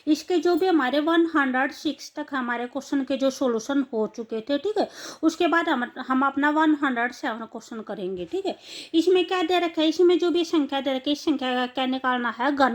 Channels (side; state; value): both; identical; correlation 1.00